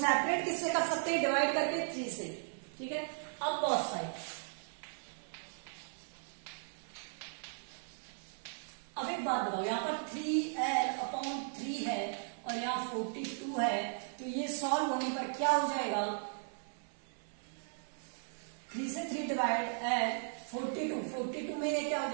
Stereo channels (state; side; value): silent; left; 53 dB below the other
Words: किससे कर सकते हैं? डिवाइड करके 3 से। ठीक है, अब बोथ साइड। अब एक बात बताओ, यहां पर 3l/3 है और यहाँ 42 है, तो ये सॉल्व होने पर क्या हो जाएगा? 3 से 3 डिवाइड l 42 में ये क्या हो